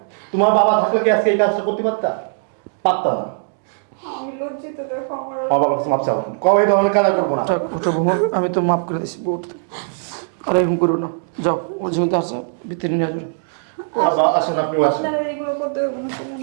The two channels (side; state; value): left; silent; digital silence